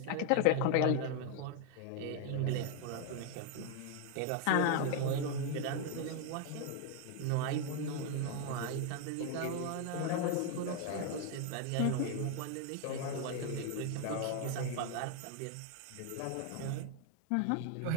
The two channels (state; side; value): different; both; correlation 0.01